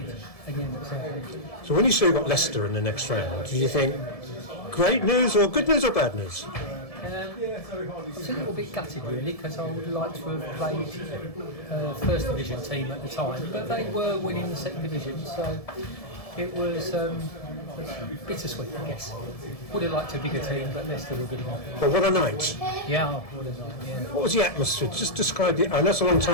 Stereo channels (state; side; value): late; right; 1.7 ms